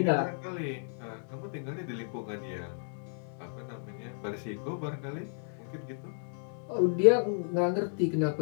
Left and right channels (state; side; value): silent; right; digital silence